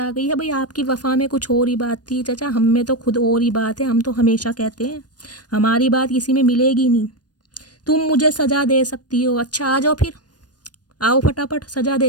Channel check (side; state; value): right; late; 0.69 ms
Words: गई है भाई आपकी वफा में कुछ और ही बात थी। चचा हम में तो खुद और ही बात है, हम तो हमेशा कहते हैं हमारी बात किसी में मिलेगी नहीं। तुम मुझे सज़ा दे सकती हो, अच्छा आ जाओ फिर, आओ फटाफट सज़ा